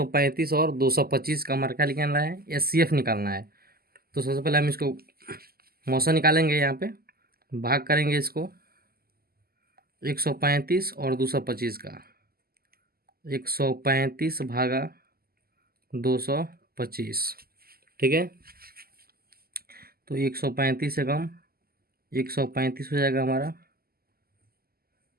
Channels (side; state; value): left; late; 0.44 ms